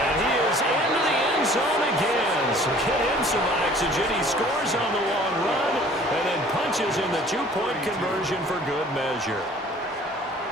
he is into the end zone again. So get him some oxygen. He scores on the long run and then punches in the 2-point conversion for good measure.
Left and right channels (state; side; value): normal; both; correlation 0.51